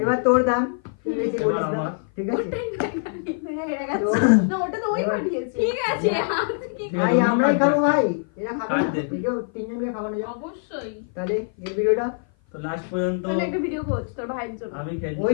এবার তোর দাম তুই বেশি এবার বলিস না। আমার। ঠিক আছে তো না ওটা তো ওই এবার- পাঠিয়েছে। ঠিক আছে হাত কি ভাই আমরাই খাবো ভাই, এরা খাবে কাট না। দে। একেও তিনজনকে খাওয়ানো যাবে। অবশ্যই তাহলে এই ভিডিওটা তো লাস্ট পর্যন্ত তাহলে একটা ভিডিও করছ তোর ভাইয়ের জন্য। আমি খেলছি ওই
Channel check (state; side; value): silent; right; 56 dB below the other